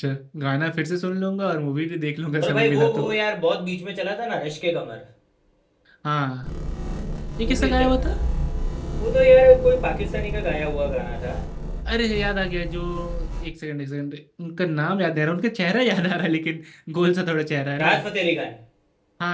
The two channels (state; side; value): identical; both; correlation 1.00